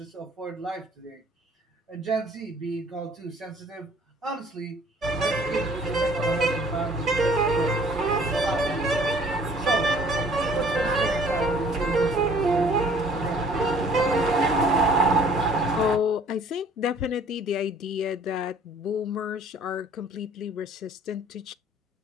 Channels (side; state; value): both; normal; correlation 0.55